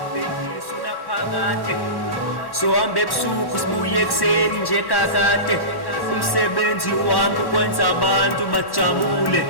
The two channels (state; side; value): late; right; 1.1 ms